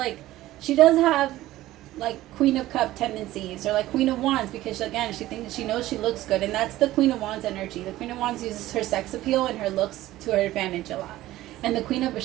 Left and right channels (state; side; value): quieter; left; 15.8 dB